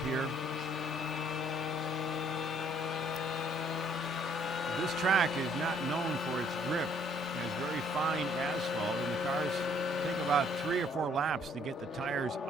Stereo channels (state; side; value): normal; both; correlation 0.63